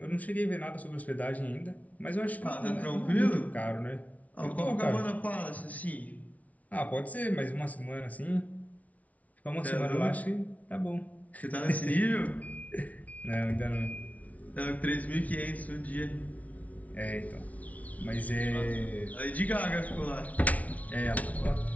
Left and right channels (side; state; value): right; late; 0.069 ms